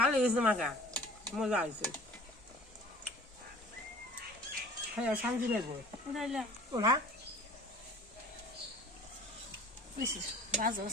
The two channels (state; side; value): normal; both; correlation 0.46